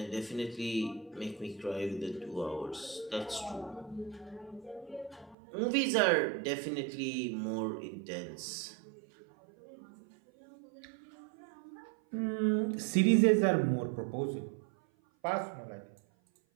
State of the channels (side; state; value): left; drops out; at 5.4 s